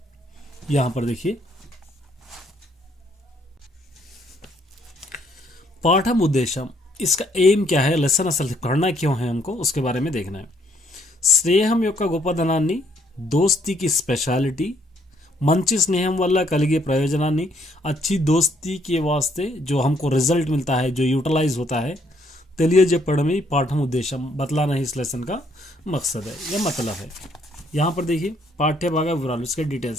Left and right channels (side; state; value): both; normal; correlation 0.68